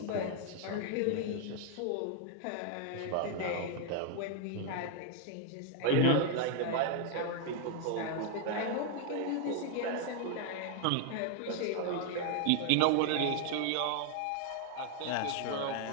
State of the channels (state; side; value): different; both; correlation 0.00